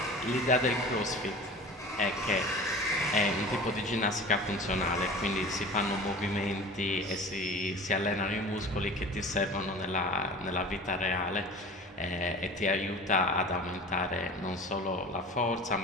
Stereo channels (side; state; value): both; normal; correlation 0.38